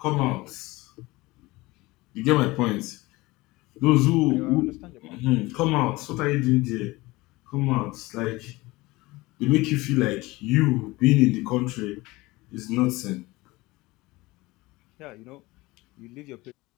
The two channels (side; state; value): right; quieter; 21.1 dB